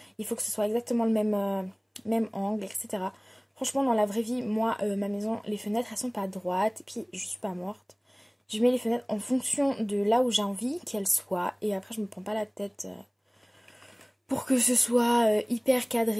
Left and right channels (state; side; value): identical; both; correlation 1.00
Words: Il faut que ce soit exactement le même angle, etc. Franchement, dans la vraie vie, moi, ma maison, les fenêtres, elles sont pas droites. Et puis, je suis pas morte. Je mets les fenêtres en fonction de là où j'ai envie qu'elles soient. Et après, je me prends pas la tête pour que ce soit hyper